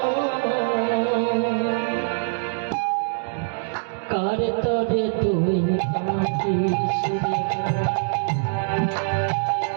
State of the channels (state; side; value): silent; left; digital silence